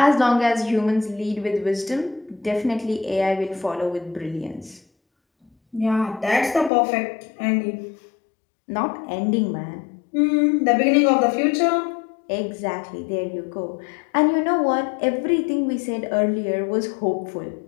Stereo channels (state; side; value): drops out; right; at 6.7 s